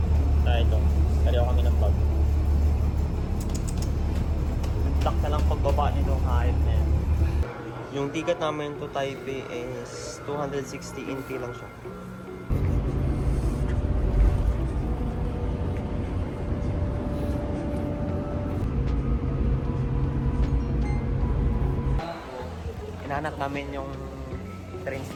Ito. Kariyo kami ng bag. Lock na lang pagbaba nitong hype na yan. Yung ticket namin to Taipei is 260 NT lang siya. Hinahanap namin yung train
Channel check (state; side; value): identical; both; correlation 1.00